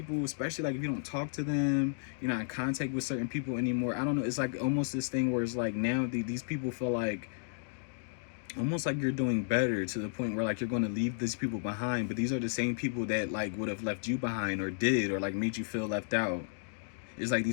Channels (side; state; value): right; silent; digital silence